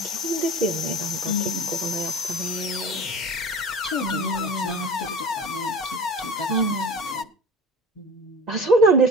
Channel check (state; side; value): normal; both; correlation 0.38